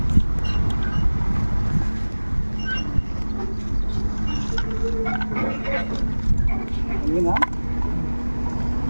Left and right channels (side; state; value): both; inverted; correlation -1.00